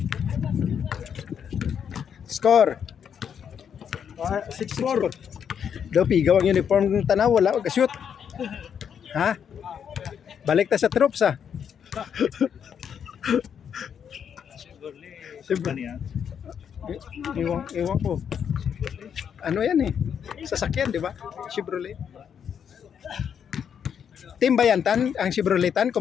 Score. 6-4. Daw pigaw ang uniform ng Tanaw, wala mag-shoot. Ha? Balik ta sa troops ah. Iwan ko. Ano yan eh? Sasakyan, di ba? Chevrolet. Team ba yan, Tan? Ang Chevroletan,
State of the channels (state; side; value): quieter; right; 7.9 dB